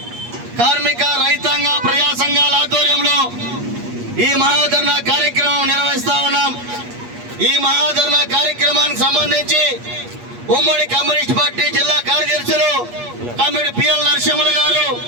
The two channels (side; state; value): left; late; 8.4 ms